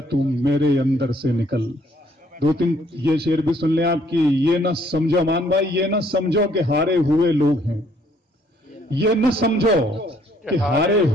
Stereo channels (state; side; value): normal; both; correlation 0.65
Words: तू मेरे अंदर से निकल। दो तीन ये शेर भी सुन लें आपकी। ये न समझो मान भाई, ये न समझो कि हारे हुए लोग हैं, ये न समझो कि हारे